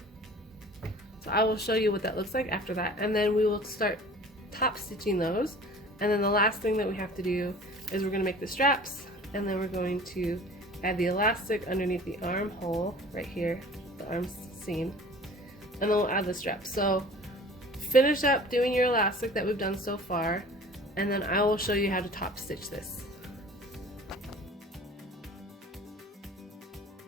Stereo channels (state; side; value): normal; both; correlation 0.44